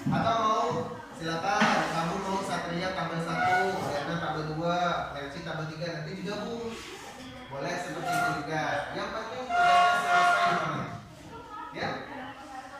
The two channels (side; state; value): both; identical; correlation 1.00